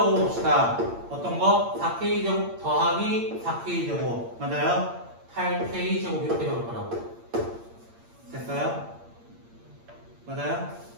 어떤 거? 4k제곱 더하기 4k제곱 맞아요? 8k제곱 이렇게 적을 거라고. 됐어요? 맞아요?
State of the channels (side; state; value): left; late; 8.7 ms